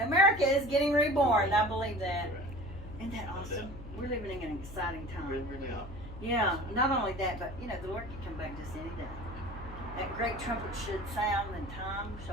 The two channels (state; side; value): noise; left; hum, 14 dB below the sound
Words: America is getting reborn. I believe that. Right. Isn't that awesome? We're living in an exciting We time. really are. Yeah, not only that, but you know, the Lord can come back just any day. That great trumpet should sound, and time